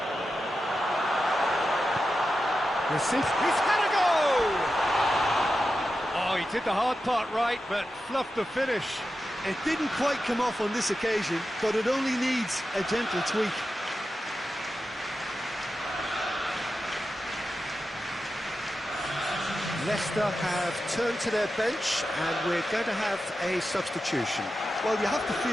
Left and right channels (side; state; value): both; normal; correlation 0.91